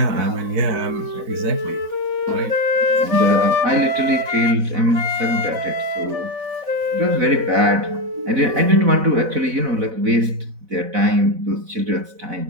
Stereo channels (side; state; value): left; late; 4.1 ms